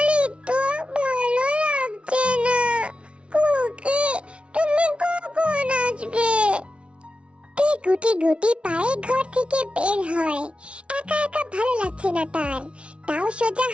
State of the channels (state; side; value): late; left; 0.059 ms